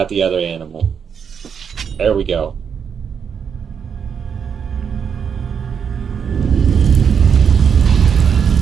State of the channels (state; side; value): quieter; left; 7.1 dB